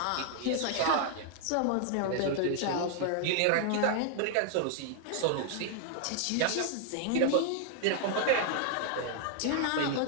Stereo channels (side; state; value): both; different; correlation 0.00